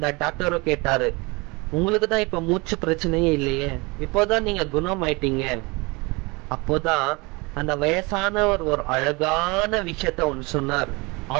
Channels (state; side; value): quieter; left; 26.2 dB